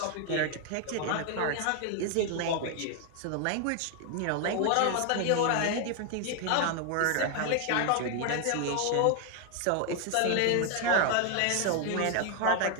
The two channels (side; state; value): both; different; correlation 0.01